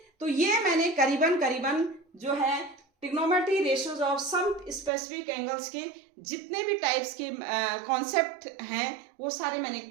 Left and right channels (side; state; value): left; drops out; at 4.9 s